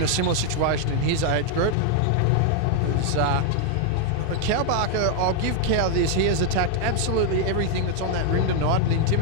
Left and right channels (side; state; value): both; different; correlation 0.00